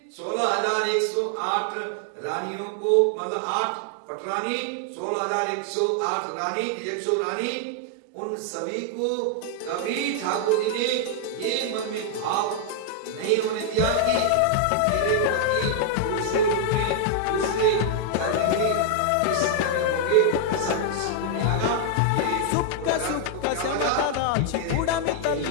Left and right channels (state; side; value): different; both; correlation 0.00